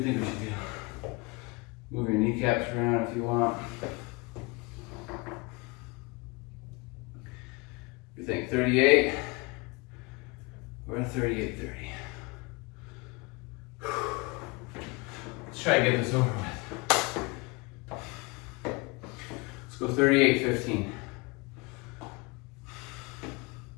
think we should do? Move your kneecaps around if you want. You think 38 or 38:30? Let's try to get this over with. Go 38:15.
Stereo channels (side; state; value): right; quieter; 26.4 dB